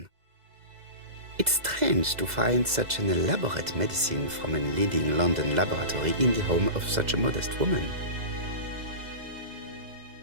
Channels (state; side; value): late; left; 2.0 ms